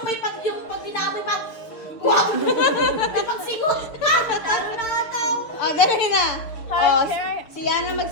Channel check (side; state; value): right; late; 6.7 ms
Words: may pag yung pag binamoy pa? Wow! May pagsigot pa! Talo na ata ako. Dali na. Si Yana